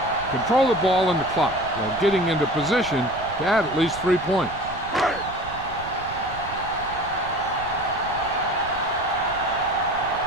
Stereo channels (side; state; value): right; noise; rumble, 15 dB below the sound